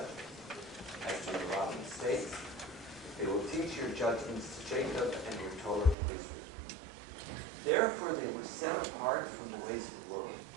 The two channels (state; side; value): drops out; left; at 6.0 s